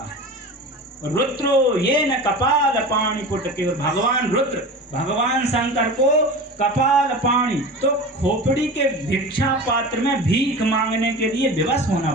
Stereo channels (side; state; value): both; normal; correlation 0.32